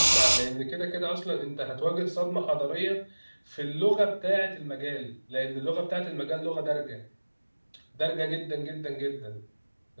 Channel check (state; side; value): inverted; both; correlation -1.00